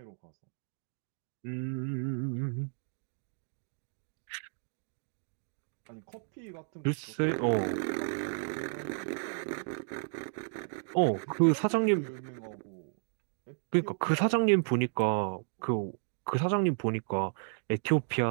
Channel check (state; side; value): silent; left; digital silence